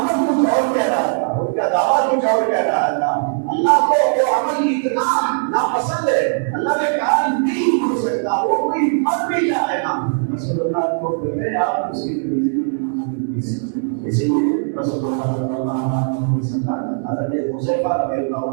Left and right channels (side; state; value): left; silent; 67 dB below the other